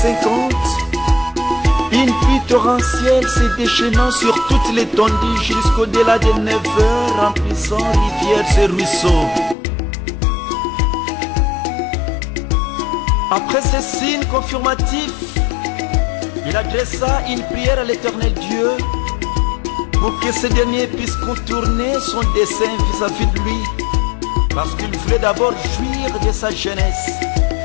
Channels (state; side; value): drops out; right; at 9.6 s